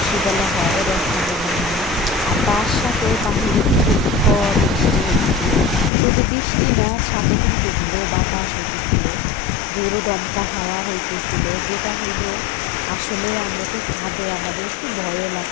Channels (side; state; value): right; drops out; at 5.9 s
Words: বলা হয়, রেখা বলা হয়। আর তার সাথে বাহিরে কিন্তু ঝড় বৃষ্টি হচ্ছে। শুধু বৃষ্টি না, সাথে কিন্তু ঝোড়ো বাতাস হইতেছিল, ঝোড়ো দমকা হাওয়া হইতেছিল, যেটা হইল আসলে আমরা তো ছাদে, আমাদের একটু ভয়ও